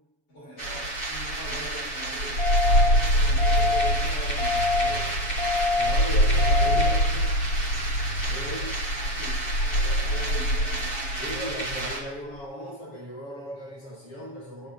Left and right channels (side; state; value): right; late; 7.2 ms